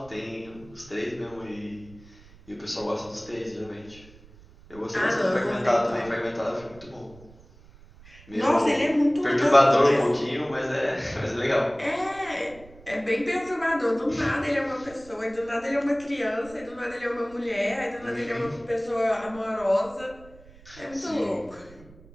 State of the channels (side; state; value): right; noise; rumble, 22 dB below the sound